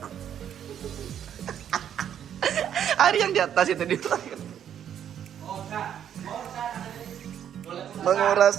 hari yang di atas itu di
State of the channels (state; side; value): quieter; left; 9.5 dB